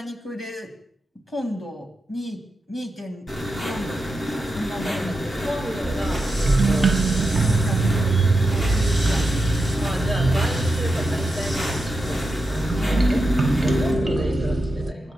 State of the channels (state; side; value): normal; both; correlation 0.89